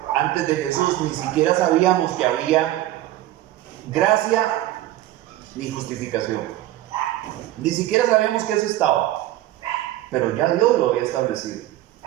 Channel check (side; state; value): left; quieter; 14.8 dB